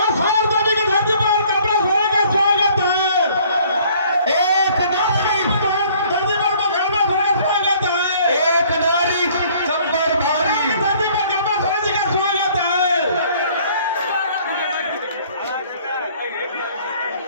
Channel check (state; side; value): inverted; both; correlation -0.57